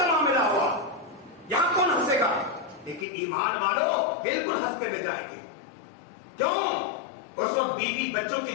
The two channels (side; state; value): right; drops out; at 3.1 s